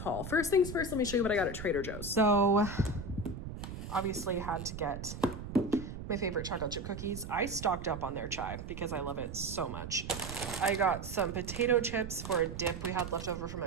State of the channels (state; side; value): noise; right; rumble, 9 dB below the sound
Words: First things first, let me show you what I got at Trader Joe's. So, obviously had to get my favorite chocolate chip cookies. I stocked up on their chai because I love it so much. I got some potato chips for a dip we had left over from